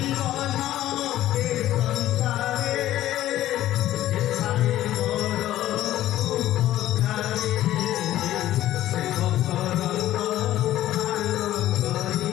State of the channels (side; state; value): right; quieter; 13.8 dB